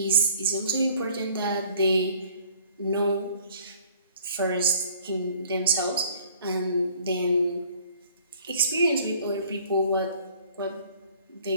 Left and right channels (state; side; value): inverted; both; correlation -0.55